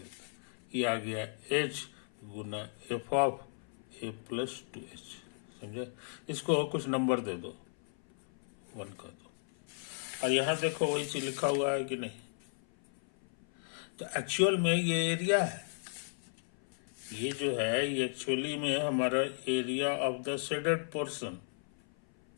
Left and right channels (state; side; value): silent; right; 54 dB below the other